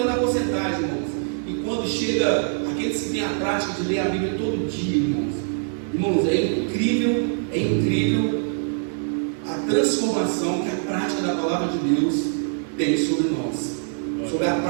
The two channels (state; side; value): silent; left; digital silence